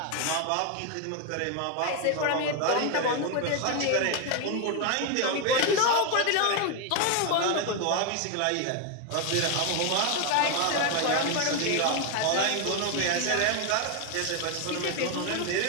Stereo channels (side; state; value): both; different; correlation 0.01